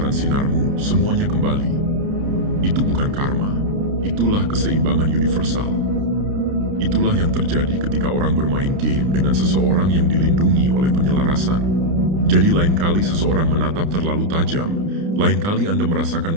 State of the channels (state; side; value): late; left; 30 ms